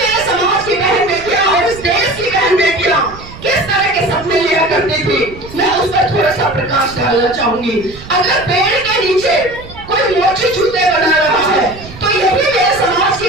समाज की बहन बेटियां और इस देश की बहन बेटियां किस तरह के सपने लिया करती थी, मैं उस पर थोड़ा सा प्रकाश डालना चाहूंगी। अगर पेड़ के नीचे कोई मोची जूते बना रहा है, तो यही मेरे समाज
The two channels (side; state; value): right; noise; rumble, 16 dB below the sound